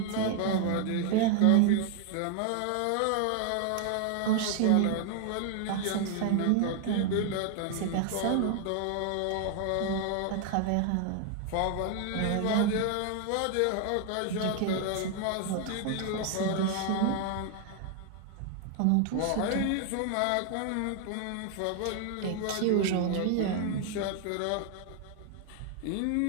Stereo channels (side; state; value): both; different; correlation 0.00